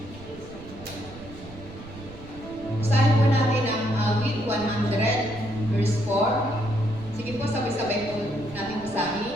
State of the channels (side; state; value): right; noise; rumble, 17 dB below the sound